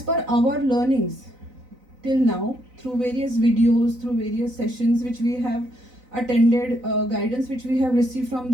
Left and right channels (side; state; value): left; late; 4.0 ms